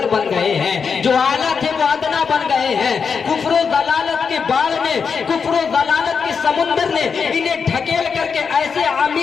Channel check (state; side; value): quieter; right; 5.9 dB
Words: बन गए हैं, जो आला थे वो अदना बन गए हैं। कुफ्र दलालत के बाढ़ में, कुफ्र दलालत के समुंदर ने इन्हें ढकेल करके ऐसे